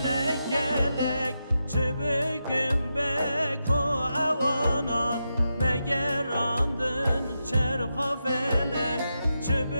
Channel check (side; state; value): both; inverted; correlation -0.87